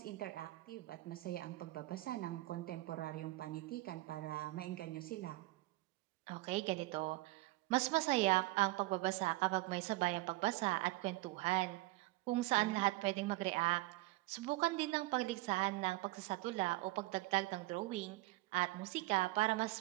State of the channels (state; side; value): quieter; left; 20.5 dB